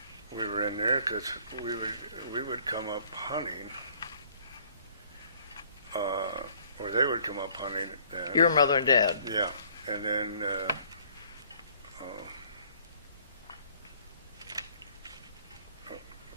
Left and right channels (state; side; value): inverted; both; correlation -0.59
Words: we were in there because we would come up hunting, or they would come up hunting. Your mother and dad. Yeah, and then